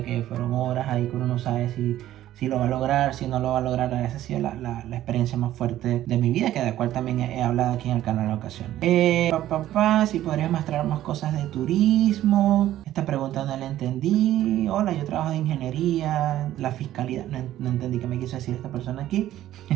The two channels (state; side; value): quieter; left; 13.3 dB